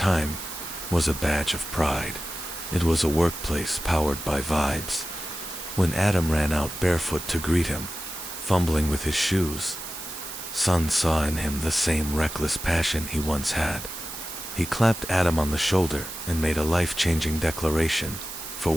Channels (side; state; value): right; noise; hiss, 10 dB below the sound